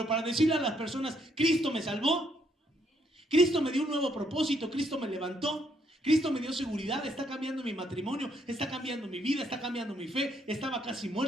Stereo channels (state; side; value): normal; both; correlation 0.72